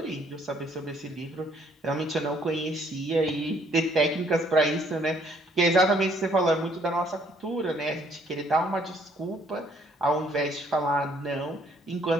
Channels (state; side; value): normal; both; correlation 0.64